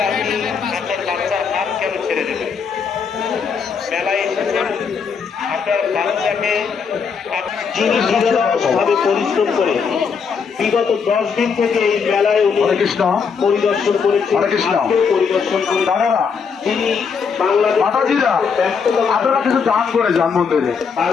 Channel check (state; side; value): quieter; right; 6.0 dB